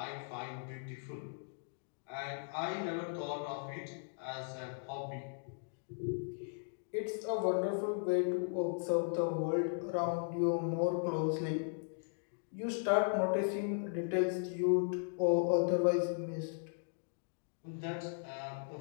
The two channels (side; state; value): right; silent; digital silence